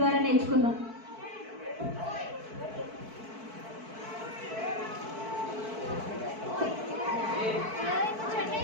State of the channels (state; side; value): late; left; 4.5 ms